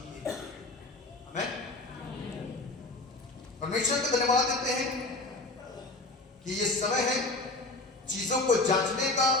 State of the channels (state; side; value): quieter; right; 3.0 dB